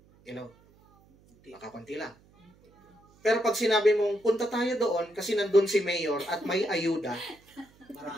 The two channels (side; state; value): right; noise; hum, 29 dB below the sound